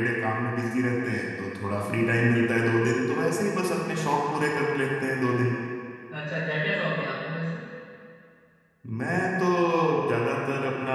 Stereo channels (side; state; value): both; identical; correlation 1.00